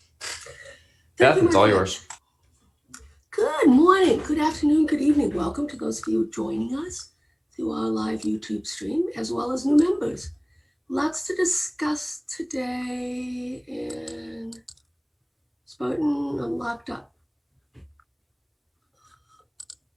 Beth, it's all yours. Good morning, good afternoon, good evening. Welcome to those of you joining us through our live YouTube stream, as well as new members. Lots to discuss today, and Spartan, I'm locked up.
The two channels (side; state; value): both; identical; correlation 1.00